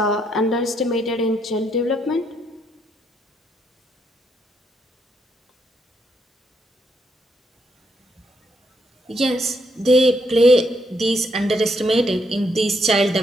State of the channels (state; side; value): normal; both; correlation 0.75